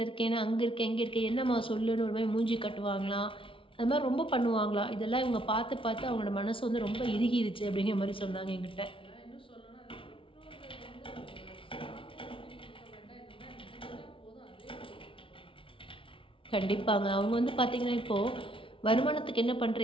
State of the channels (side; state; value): right; late; 0.25 ms